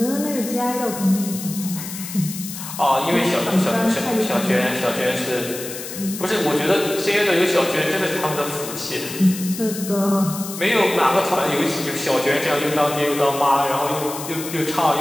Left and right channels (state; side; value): noise; left; hiss, 9 dB below the sound